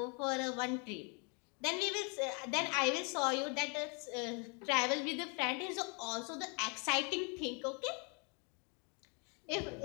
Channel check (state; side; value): quieter; right; 34.7 dB